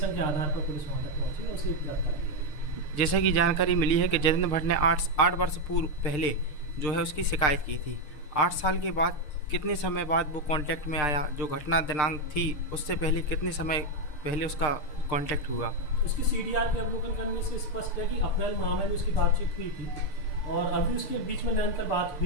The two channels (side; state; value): right; late; 6.6 ms